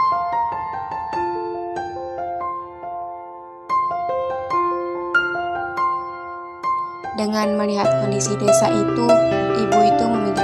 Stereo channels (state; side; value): identical; both; correlation 1.00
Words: Dengan melihat kondisi desa itu, ibu itu